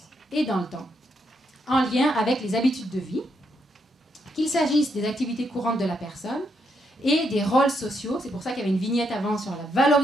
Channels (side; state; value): both; normal; correlation 0.78